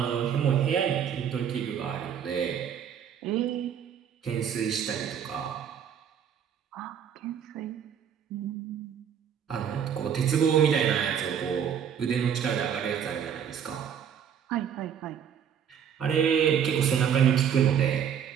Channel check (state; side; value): quieter; left; 8.3 dB